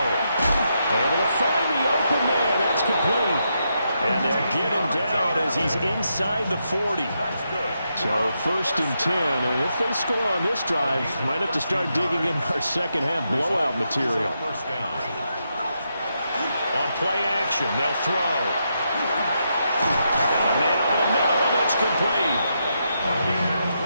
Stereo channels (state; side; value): inverted; both; correlation -0.82